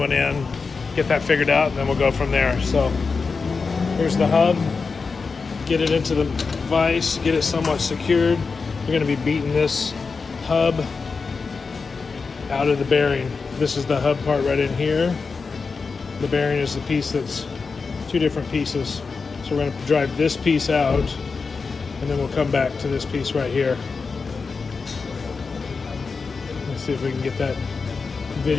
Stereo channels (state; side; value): quieter; right; 4.7 dB